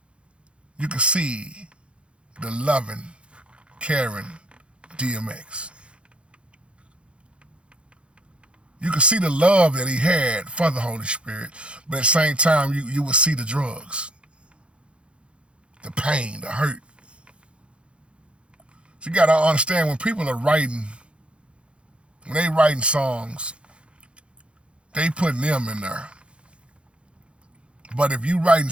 you could see the loving, caring DMX. You could see the love that he had for the Holy Spirit, but at the same time, you would see the drugs, the pain, the hurt. So you gotta understand when people are writing, when they writing songs, they putting them in there. But if you writing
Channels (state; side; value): late; left; 0.058 ms